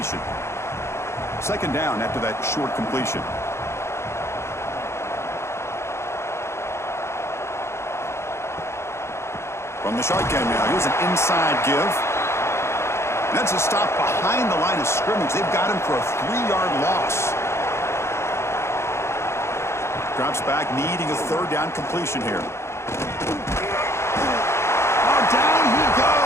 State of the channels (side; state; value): right; late; 0.13 ms